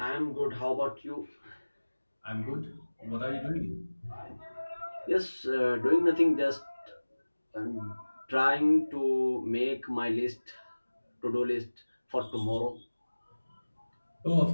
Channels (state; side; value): inverted; both; correlation -1.00